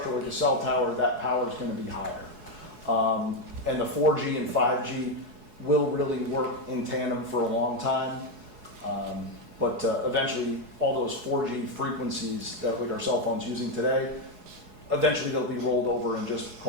like a cell tower, that power is going to be higher. And the 4G and 5G will really work in tandem for a long time. But eventually, all those 4G frequencies that like our cell phones using today, eventually they'll be rolled over and just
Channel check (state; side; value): late; left; 4.7 ms